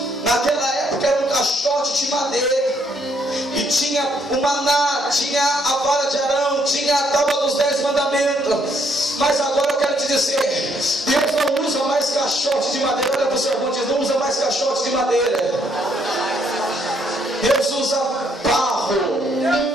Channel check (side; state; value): both; normal; correlation 0.70